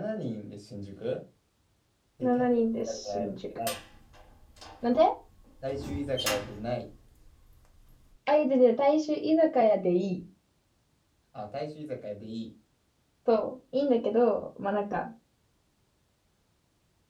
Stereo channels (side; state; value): both; identical; correlation 1.00